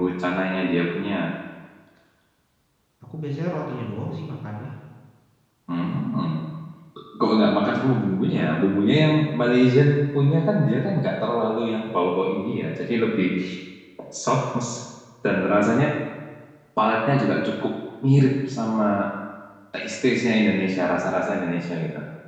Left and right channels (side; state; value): both; identical; correlation 1.00